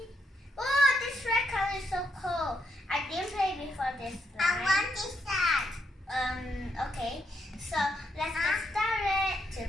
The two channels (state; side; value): normal; both; correlation 0.78